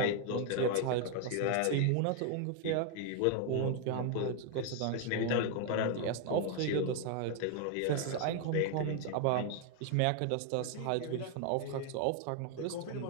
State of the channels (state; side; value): different; both; correlation 0.00